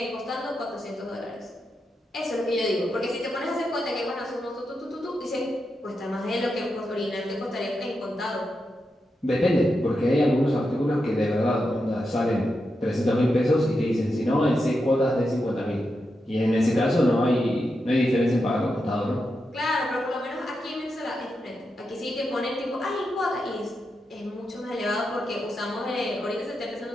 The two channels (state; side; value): normal; both; correlation 0.87